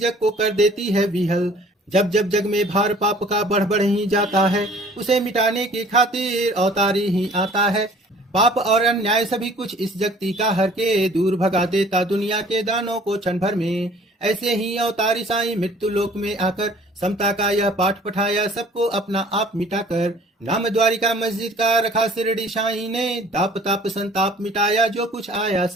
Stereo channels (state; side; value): normal; both; correlation 0.52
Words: को कर देती है विहल, जब जब जग में भार पाप का बढ़ बढ़ ही जाता है, उसे मिटाने की खातिर अवतारी ही आता है। पाप और अन्याय सभी कुछ इस जगती का हर के दूर भगा देता दुनिया के दानों को क्षण भर में। ऐसे ही अवतारी साईं मृत्यु लोक में आकर समता का यह पाठ पठाया सबको अपना आप मिटाकर। नाम द्वारिका मस्जिद का रखा शिरडी साईं ने, दाप ताप संताप मिटाया जो कुछ आया